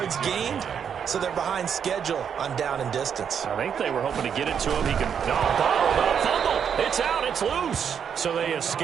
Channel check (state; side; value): quieter; left; 7.7 dB